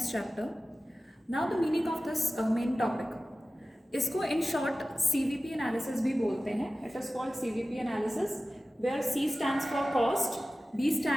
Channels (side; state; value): both; normal; correlation 0.95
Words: chapter. Now the meaning of this main topic. इसको in short CVP analysis भी बोलते हैं. It is called CVP analysis, where C stands for cost, B